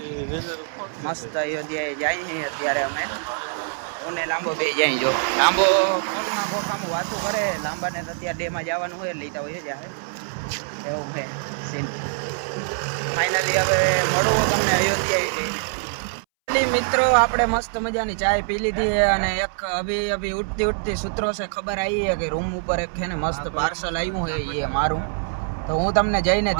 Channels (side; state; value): left; silent; 63 dB below the other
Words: મસ્ત અયોધ્યાએ જાય છે અત્યારે અમે. હું ને લાંબો બે જાય. જો લાંબો ફોનમાં કોઠામાં વાતું કરે, લાંબાને તો અત્યારે ડેમાં જવાનું હોય લેતા હોય જાય એવું છે સીન. ફાઇનલી હવે મળવું તમને અયોધ્યાએ જઈને. મિત્રો આપણે મસ્ત મજાની ચાય પી લીધી છે અને એક અભી ઉઠતી સૂત્રો છે ખબર આવી છે કે રૂમ ઉપર એક છે ને મસ્ત પાર્સલ આવ્યું છે એ મારું. તો હું તમને જઈને